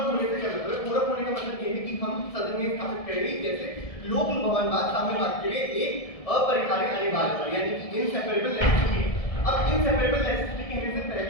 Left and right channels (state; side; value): late; right; 1.7 ms